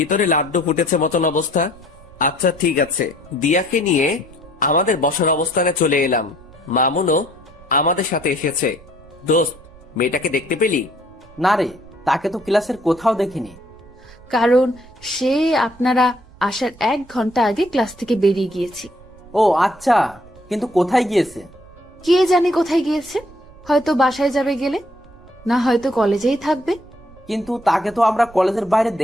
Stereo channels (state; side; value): noise; right; rumble, 23 dB below the sound